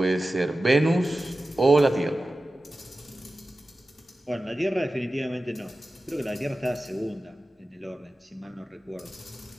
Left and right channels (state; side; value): normal; both; correlation 0.94